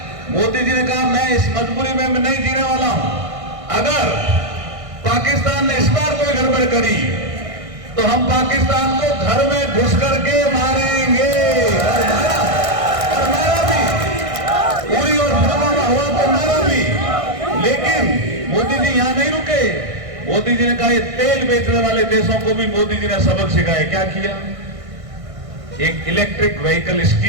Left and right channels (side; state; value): left; late; 1.6 ms